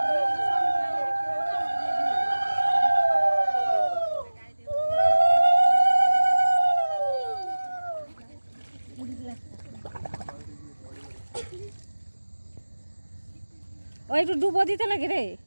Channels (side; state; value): both; inverted; correlation -1.00